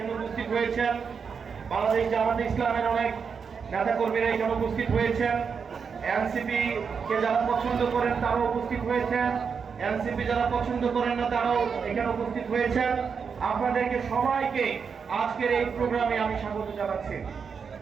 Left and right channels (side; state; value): left; quieter; 6.1 dB